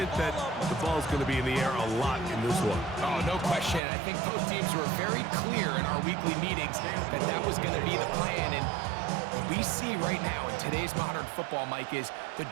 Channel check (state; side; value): drops out; left; at 3.8 s